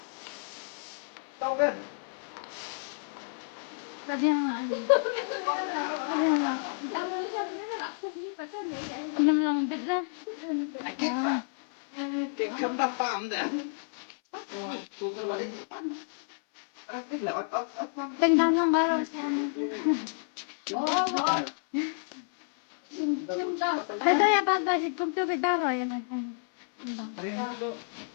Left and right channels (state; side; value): silent; right; 58 dB below the other